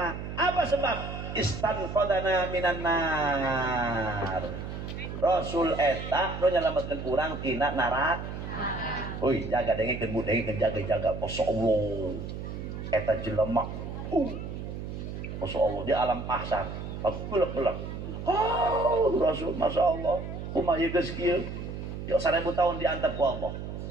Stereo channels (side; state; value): right; noise; hum, 7 dB below the sound